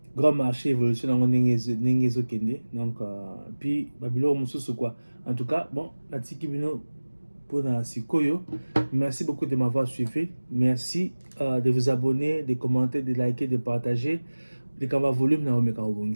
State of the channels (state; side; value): inverted; both; correlation -1.00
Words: grand marché évolution dans Nengezo Kende, donc puis Babylon Moussou quoi. En tout cas bon la Tikibino pour la Sikoyo. Merci beaucoup de m'avoir suivi. Merci de vous abonner, de commenter, de liker, de partager. De Kamba volume na omeka